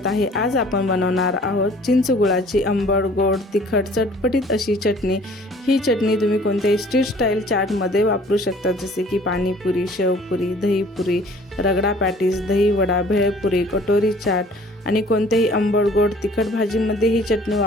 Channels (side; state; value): both; normal; correlation 0.53